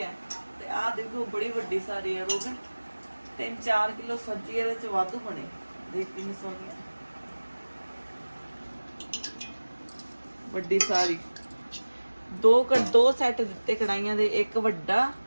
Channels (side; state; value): both; inverted; correlation -1.00